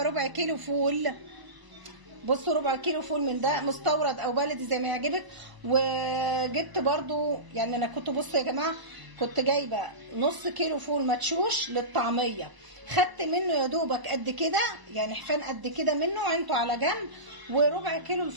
ربع كيلو فول. بصوا ربع كيلو فول من ده مستورد او بلدي زي ما يعجبك. وجبت برضو، يعني انا كنت بصوا يا جماعه، كنت جايبه نص كيلو فول مدشوش للطعميه، خدت منه يا دوبك قد كده، يعني حفان قد كده منه عينته على جنب. وربع كيلو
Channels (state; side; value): late; left; 1.0 ms